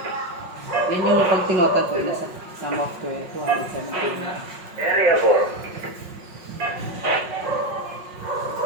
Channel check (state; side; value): late; left; 5.5 ms